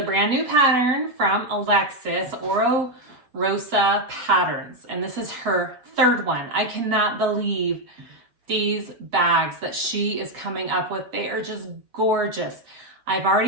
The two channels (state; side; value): late; left; 8.0 ms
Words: brand new pattern from Alexis, Oro Rosa Patterns, and this is her third one. I cannot believe these bags that she is coming up with. They are just gorgeous. I've